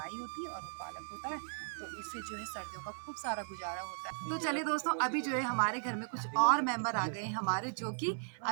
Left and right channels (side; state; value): left; silent; 53 dB below the other